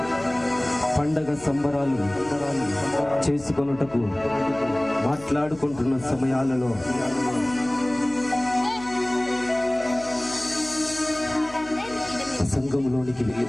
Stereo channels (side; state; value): left; noise; hum, 20 dB below the sound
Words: పండగ సంబరాలు చేసుకొనుటకు మాట్లాడుకుంటున్న సమయాలలో సంఘములోనికి